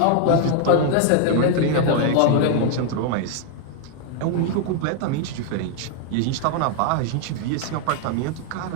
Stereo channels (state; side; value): different; both; correlation 0.00